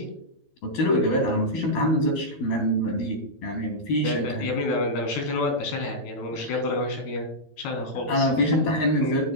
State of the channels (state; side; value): late; right; 12 ms